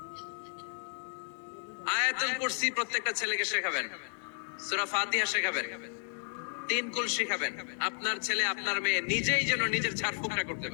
আয়াতুল কুরসি প্রত্যেকটা ছেলেকে শেখাবেন, সূরা ফাতিহা শেখাবেন, তিন কুল শেখাবেন। আপনার ছেলে আপনার মেয়ে নিজেই যেন নিজের ঝাড়ফুঁকটা করতে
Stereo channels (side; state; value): right; silent; 56 dB below the other